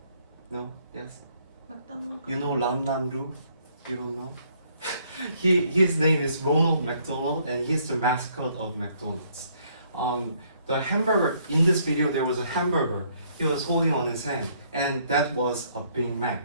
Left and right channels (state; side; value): inverted; both; correlation -0.66